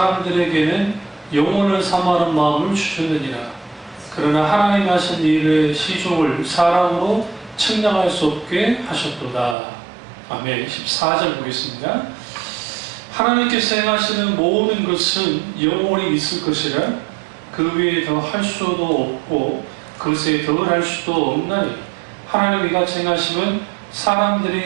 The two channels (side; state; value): left; drops out; at 9.6 s